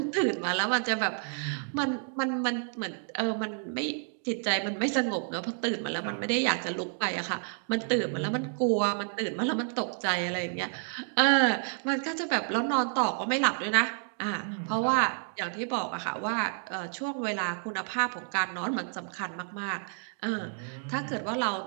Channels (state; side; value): silent; left; 58 dB below the other